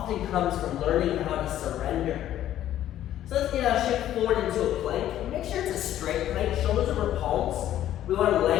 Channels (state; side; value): quieter; right; 12.2 dB